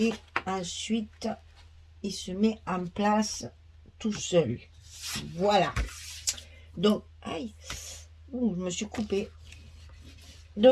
ensuite, il se met en place tout seul. Voilà. Donc, aïe, ouh, je me suis coupée.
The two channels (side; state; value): both; identical; correlation 1.00